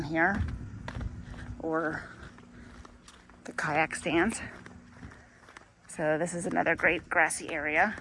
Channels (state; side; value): identical; both; correlation 1.00